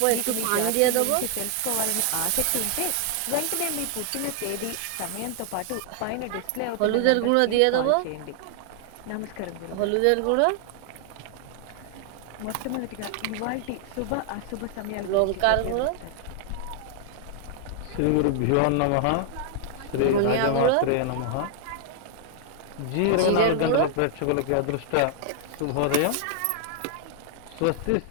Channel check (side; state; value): both; different; correlation 0.00